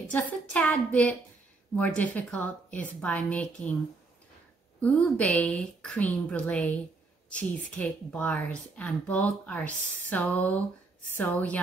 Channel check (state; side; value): quieter; left; 3.7 dB